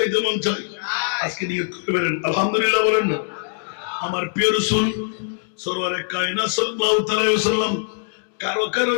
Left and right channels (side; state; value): right; silent; digital silence